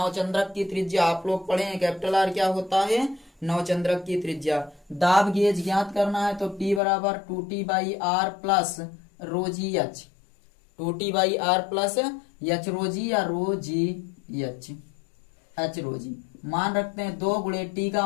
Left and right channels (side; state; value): right; drops out; at 6.8 s